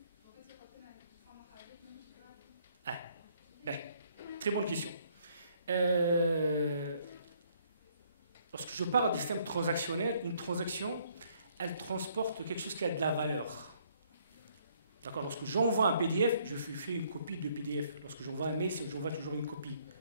Ah, ben, très bonne question. lorsque je parle de système transactionnel, une transaction, elle transporte quelque chose qui a de la valeur. D'accord? Lorsque j'envoie un PDF, je fais une copie de PDF. Lorsque j'envoie un mail, j'envoie toujours une copie.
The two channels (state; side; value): inverted; both; correlation -0.66